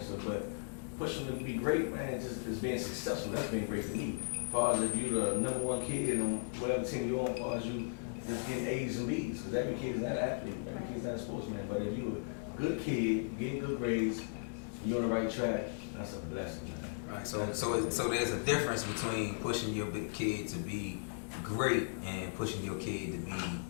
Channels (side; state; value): right; silent; digital silence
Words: So, but pushing them to be great, man, just being successful. That's being great to me. As far as if you're the #1 kid on whatever team you're on, as far as you just getting A's and B's, because every kid is not an athlete, every kid is not a sportsman. But if you're a good kid, getting good grades, you're on the right track, that's a blessing, man. Right. So there's a difference between pushing your kid to be great and pushing your kid to be